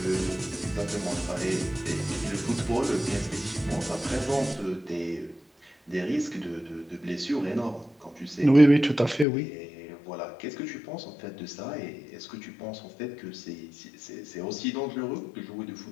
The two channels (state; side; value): drops out; right; at 9.2 s